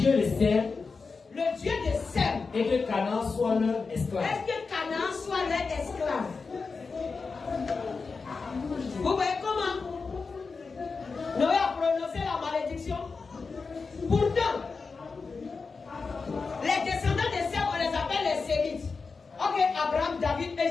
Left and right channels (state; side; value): quieter; right; 4.6 dB